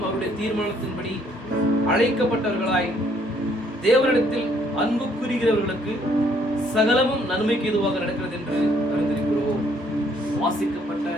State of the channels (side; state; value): both; normal; correlation 0.65